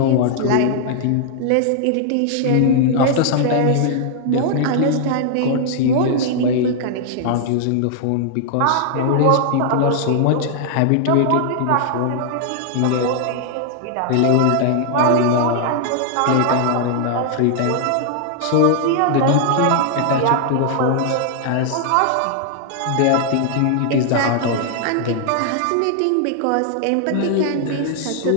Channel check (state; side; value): different; both; correlation 0.00